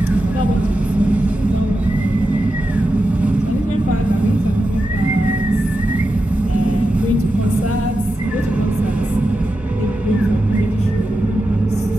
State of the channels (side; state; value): both; normal; correlation 0.89